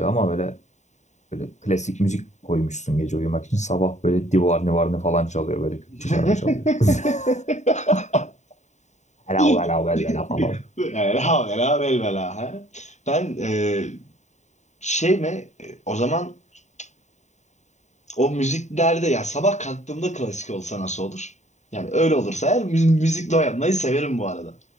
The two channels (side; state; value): right; late; 0.34 ms